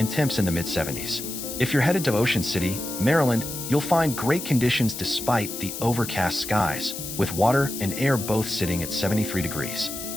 temps in the mid-70s. If you're headed to Ocean City, Maryland, you'll find great conditions despite the overcast skies, with water and air both sitting at 73 degrees.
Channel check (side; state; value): left; noise; hiss, 8 dB below the sound